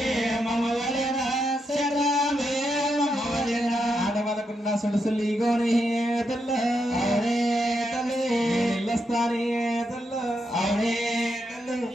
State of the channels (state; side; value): normal; both; correlation 0.82